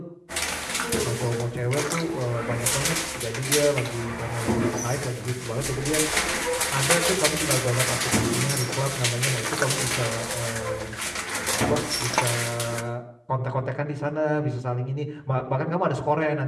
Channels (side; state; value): both; identical; correlation 1.00